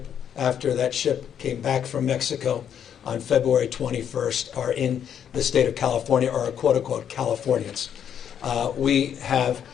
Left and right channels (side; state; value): right; quieter; 8.8 dB